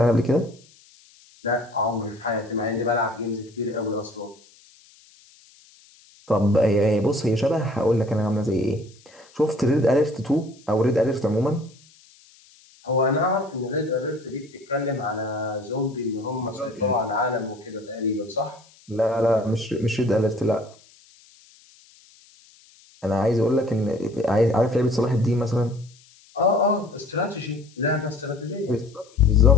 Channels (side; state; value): left; noise; hiss, 27 dB below the sound